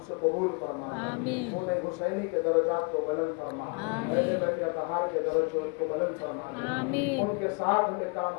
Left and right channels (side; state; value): right; quieter; 33.3 dB